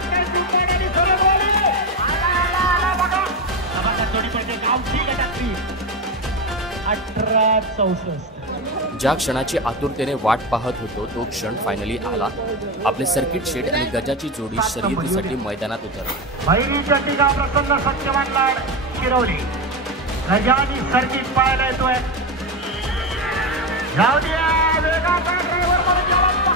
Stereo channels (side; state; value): both; normal; correlation 0.15